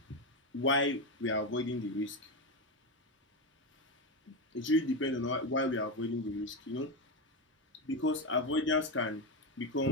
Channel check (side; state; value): both; normal; correlation 0.12